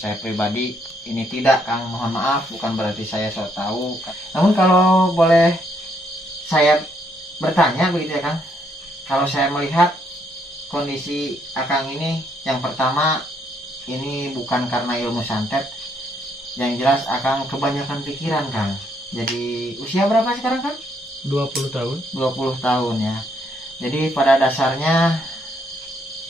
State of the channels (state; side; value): normal; both; correlation 0.72